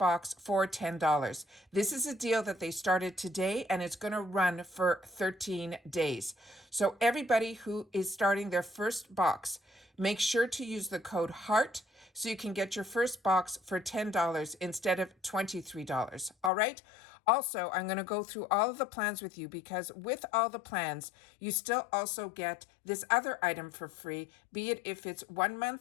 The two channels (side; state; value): right; drops out; at 16.5 s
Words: for $10. This is a deal that they started today, and it's going to run for 13 days. So everybody who is starting their first box, make sure to use the code HEART so you can get your first box for $10 instead of $23. All right? Also, I'm going to go through all of the plans with you, because with all the plans, you still also get this other item for free, be it if it's 1